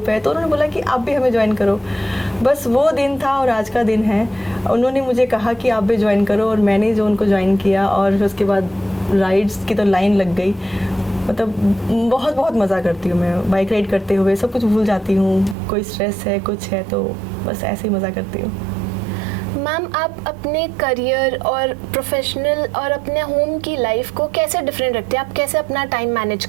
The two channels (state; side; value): drops out; left; at 15.6 s